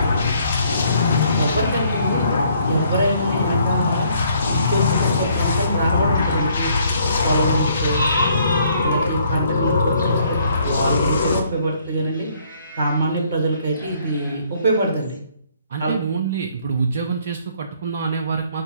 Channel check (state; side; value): inverted; both; correlation -0.65